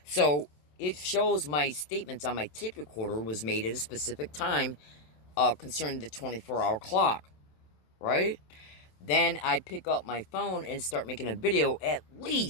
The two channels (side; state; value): right; late; 27 ms